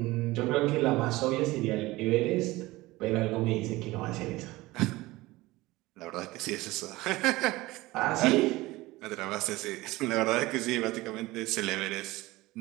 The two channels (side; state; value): left; quieter; 19.6 dB